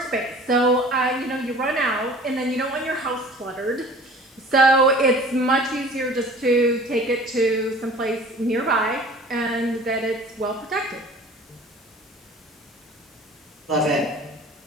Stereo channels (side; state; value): both; normal; correlation 0.46